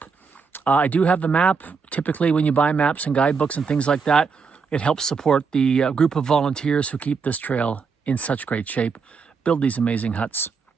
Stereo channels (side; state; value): left; quieter; 5.3 dB